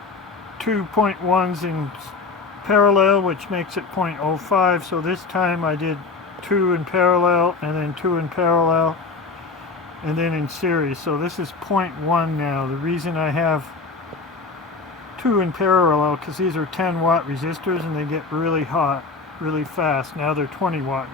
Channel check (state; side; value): quieter; right; 4.3 dB